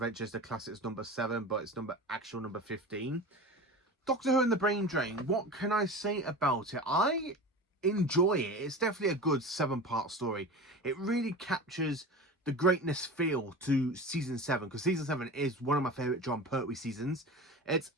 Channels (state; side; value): normal; both; correlation 0.32